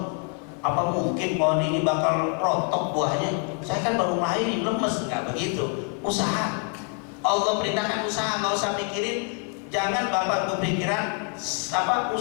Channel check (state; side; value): quieter; right; 37.1 dB